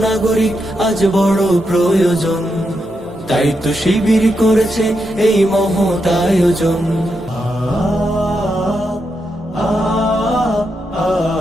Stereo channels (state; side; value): normal; both; correlation 0.84